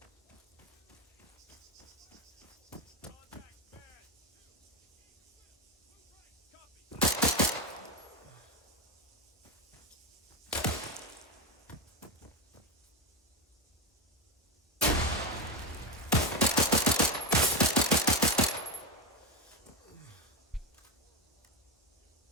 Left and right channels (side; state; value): both; normal; correlation 0.14